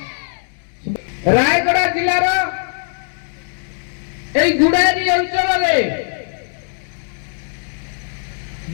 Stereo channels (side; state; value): right; silent; digital silence